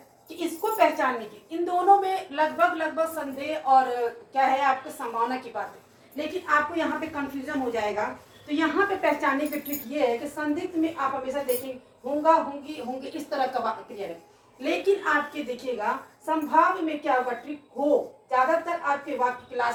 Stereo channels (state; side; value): identical; both; correlation 1.00